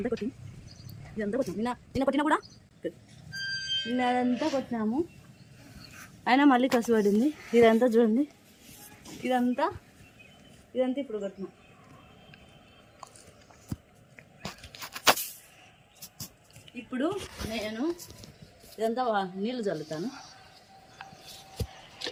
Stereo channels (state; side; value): identical; both; correlation 1.00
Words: కొట్టినా కూడా నిన్నంతా కొట్టినాము. అయినా మళ్ళీ కసు పడింది. ఇదంతా చూడండి, ఇదంతా ఇప్పుడు కొట్టినాం. ఇప్పుడు నేను ఇదంతా నీళ్ళు చల్లుతాను.